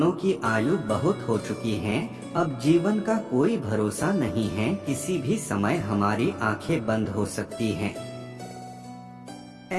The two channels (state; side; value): identical; both; correlation 1.00